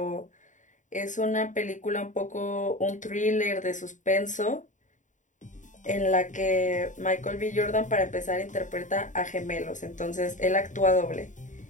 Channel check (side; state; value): right; late; 0.36 ms